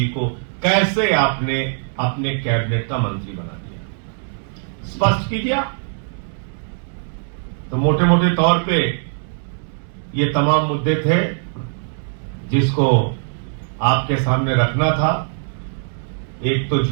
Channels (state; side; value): silent; left; digital silence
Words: को, कैसे आपने अपने कैबिनेट का मंत्री बना दिया? स्पष्ट कीजिए। तो मोटे मोटे तौर पे ये तमाम मुद्दे थे जिसको आपके सामने रखना था। एक तो